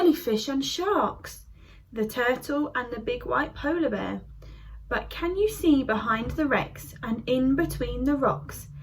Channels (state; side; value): identical; both; correlation 1.00